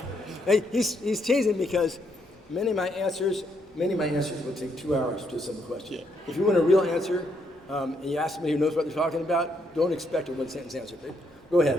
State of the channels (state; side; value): normal; both; correlation 0.75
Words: Hey, he's teasing because many of my answers will take 2 hours to a simple question. Yeah. If you want a real answer, and you ask somebody who knows what they're talking about, don't expect a one-sentence answer. Okay? Go